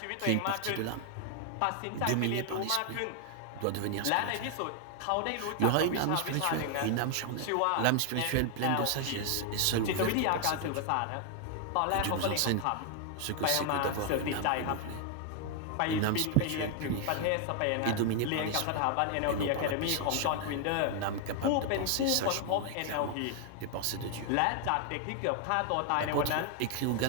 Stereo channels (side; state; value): both; different; correlation 0.00